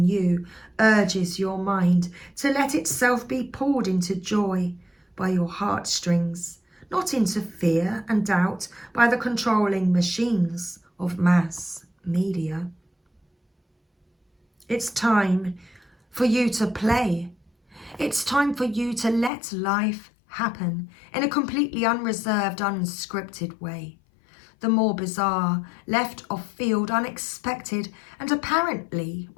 you urges your mind to let itself be pulled into joy by your heartstrings, not into fear and doubt by the controlling machines of mass media. It's time for you to play. It's time for you to let life happen in a completely unreserved, unscripted way. The more bizarre, left of field, unexpected, and apparently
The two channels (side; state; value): right; drops out; at 19.3 s